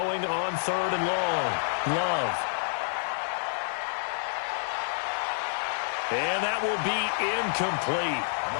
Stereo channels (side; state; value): right; silent; digital silence